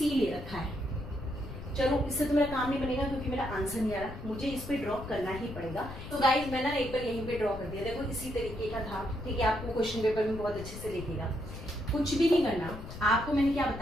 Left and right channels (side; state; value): left; noise; rumble, 11 dB below the sound